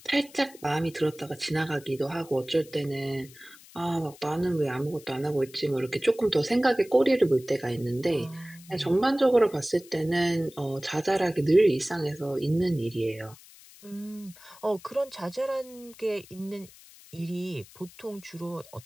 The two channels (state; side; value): noise; left; hiss, 22 dB below the sound